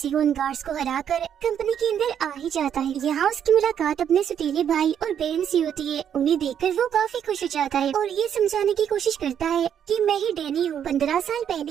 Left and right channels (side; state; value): left; quieter; 8.9 dB